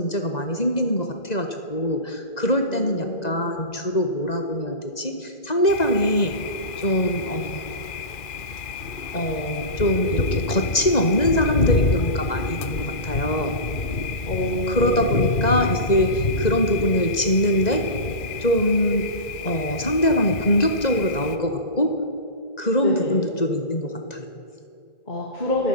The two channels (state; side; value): late; right; 1.9 ms